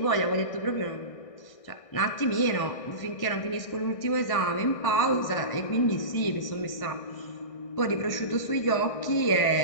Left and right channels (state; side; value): late; right; 1.6 ms